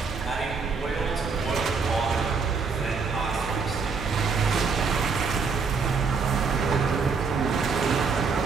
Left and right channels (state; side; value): quieter; left; 5.0 dB